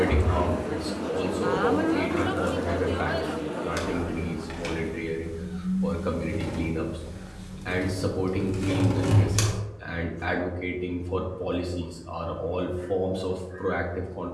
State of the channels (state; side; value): identical; both; correlation 1.00